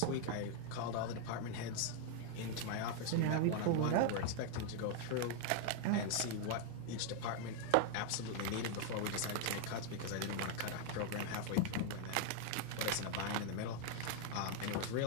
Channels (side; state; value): both; different; correlation 0.00